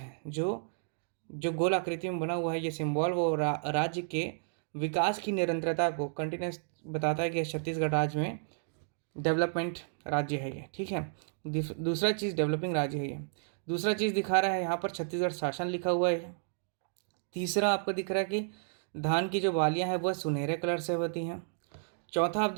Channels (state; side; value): silent; left; digital silence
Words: जो जो गोल आकृति में बना हुआ है ये सिंबल, वो राज्य के विकास की निरंतरता को, कंटिन्यूस बताता है कि छत्तीसगढ़ राज्य में डेवलपमेंट राज्य है ये। ठीक है, दूसरा चीज़ डेवलपिंग राज्य है ये। दूसरा चीज़ दिखा रहा है यहाँ पर छत्तीसगढ़ शासन लिखा हुआ है। तीसरा आपको दिख रहा है कि धान की जो बालियाँ हैं वह सुनहरे कलर से होती हैं। चौथा आप